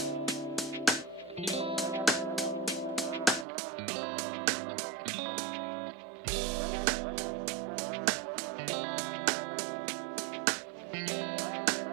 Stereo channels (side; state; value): left; drops out; at 3.5 s